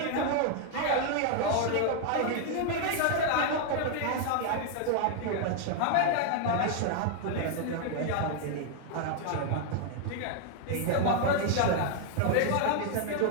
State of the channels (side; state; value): both; different; correlation 0.00